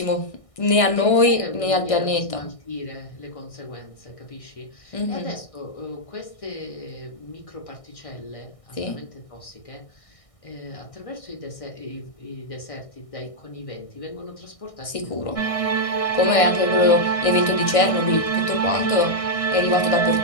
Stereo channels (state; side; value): late; right; 1.6 ms